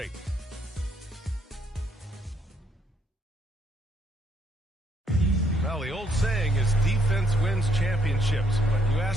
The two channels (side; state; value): both; normal; correlation 0.70